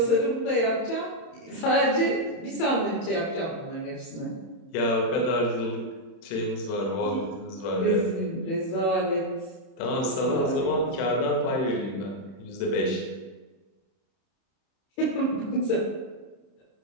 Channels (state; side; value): late; right; 30 ms